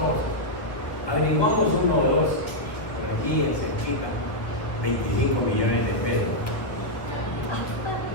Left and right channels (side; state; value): right; late; 1.4 ms